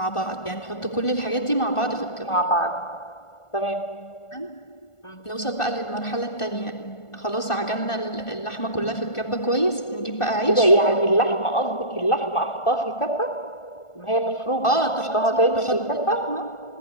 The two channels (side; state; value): right; late; 1.4 ms